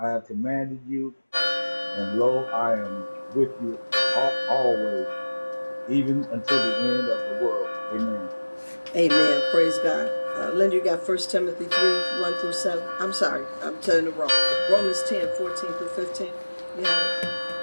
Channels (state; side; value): inverted; both; correlation -1.00